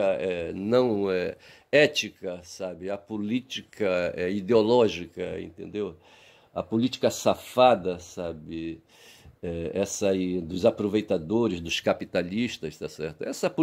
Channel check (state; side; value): identical; both; correlation 1.00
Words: não ética, sabe? A política ideológica, entendeu? A política safada, sabe? Essa aí dos aproveitadores, dos capitalistas, tá certo? Essa